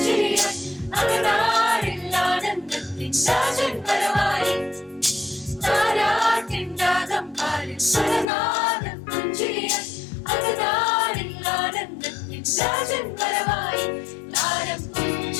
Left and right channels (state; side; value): drops out; right; at 8.2 s